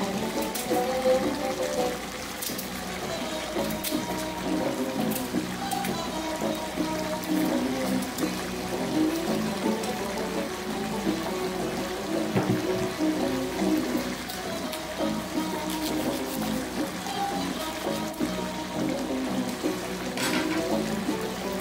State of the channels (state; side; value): identical; both; correlation 1.00